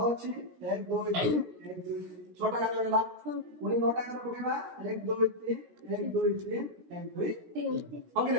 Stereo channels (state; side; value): late; left; 17 ms